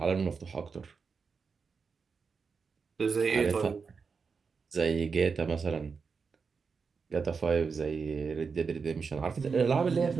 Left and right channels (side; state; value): left; quieter; 5.3 dB